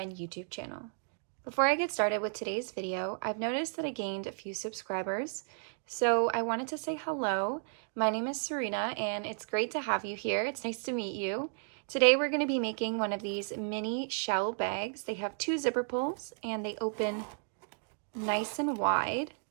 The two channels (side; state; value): left; silent; digital silence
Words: YouTube channel. Before I get started with today's video, I've noticed that I gained a few subscribers, so I wanted to say hello. My name is Serena and it's great to have you here. It's nice to meet you. Today we're going to be making one of these mini shell bags. They have two zipper pulls and they open nice and wide,